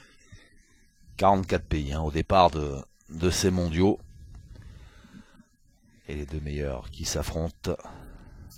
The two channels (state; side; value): identical; both; correlation 1.00